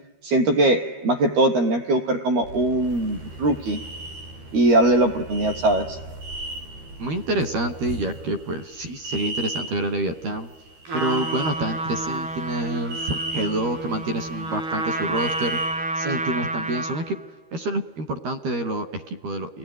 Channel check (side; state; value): left; late; 13 ms